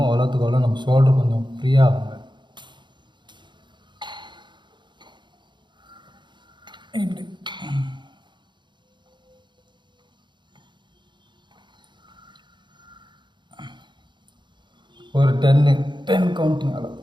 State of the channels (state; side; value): late; left; 0.22 ms